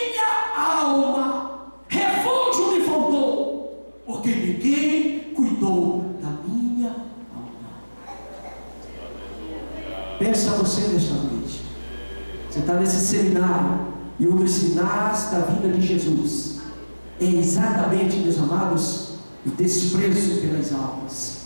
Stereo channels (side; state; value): both; inverted; correlation -1.00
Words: alma. Refúgio me faltou. Porque ninguém cuidou da minha alma. Pensa você nesta noite. Você está nesse seminário. E um dos sinais da vinda de Jesus é exatamente, meus amados, o desprezo pelas